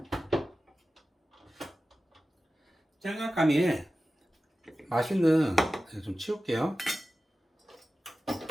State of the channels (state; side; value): normal; both; correlation 0.95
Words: 짱아까미에 맛있는, 좀 치울게요.